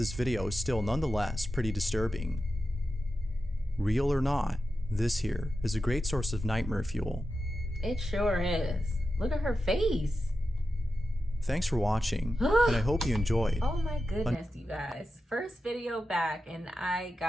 video is still nonetheless pretty disturbing. Real or not, this here is a great source of nightmare fuel. It sure is. Look at her face. Thanks for watching, and I hope you enjoyed. Oh my goodness, you guys. First video back and I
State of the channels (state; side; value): normal; both; correlation 0.91